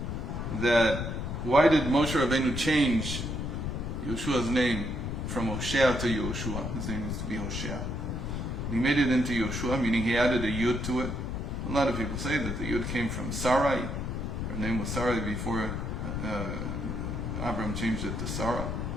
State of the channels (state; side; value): noise; left; rumble, 3 dB below the sound